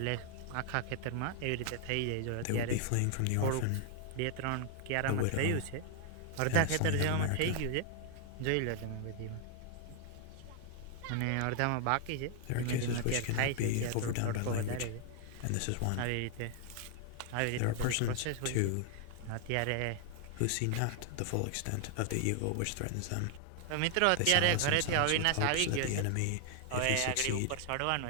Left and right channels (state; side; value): different; both; correlation 0.00